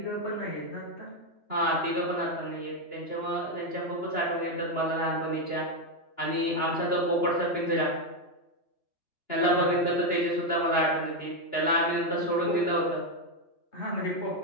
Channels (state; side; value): late; right; 2.9 ms